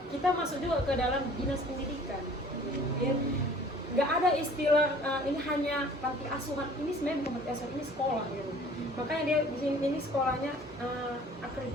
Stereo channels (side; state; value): both; normal; correlation 0.50